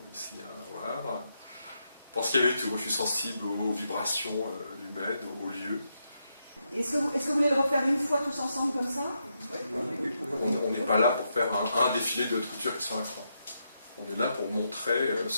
ici à Havre. Parce qu'il y avait tout, je suis sensible aux vibrations humaines, aux lieux. Est-ce que vous voulez le refaire une fois tous ensemble comme ça? Oui. On n'est pas là pour faire un défilé de haute couture qui sont à croix. On est là pour montrer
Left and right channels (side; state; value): both; inverted; correlation -0.82